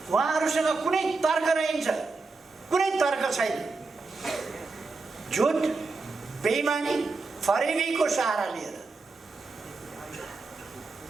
उहाँहरूसँग कुनै तर्क रहन्छ? कुनै तर्क छैन। झुट, बेइमानी, फरेबीको सहारा लिएर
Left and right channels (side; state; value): left; quieter; 3.9 dB